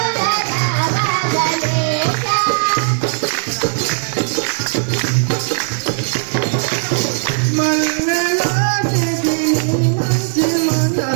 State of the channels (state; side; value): silent; left; digital silence